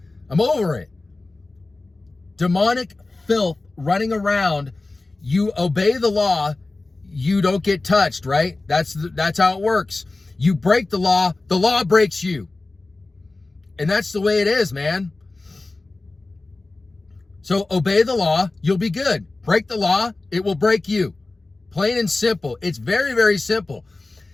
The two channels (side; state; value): right; quieter; 3.2 dB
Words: I'm over it. Demonic filth running around. You obey the law, you don't get touched, right? That's how it works. You break the law breaks you. And that's the way it is, man. So obey the law, you'll be good. Break the law, it will break you. Plain and simple. It's very, very simple.